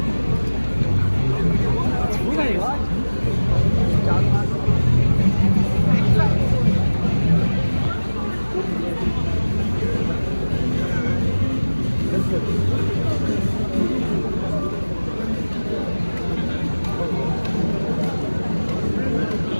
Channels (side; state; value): both; inverted; correlation -1.00